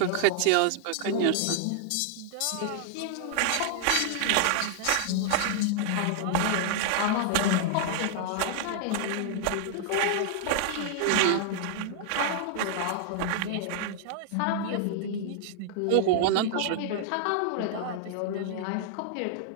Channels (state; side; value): different; both; correlation 0.00